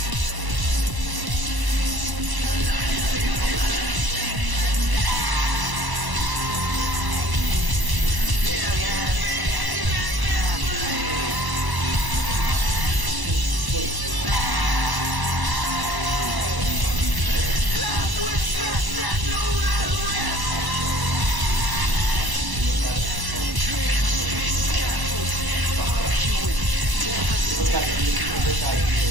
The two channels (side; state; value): left; late; 1.0 ms